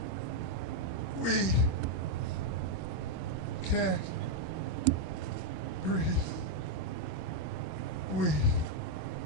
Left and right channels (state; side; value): normal; both; correlation 0.00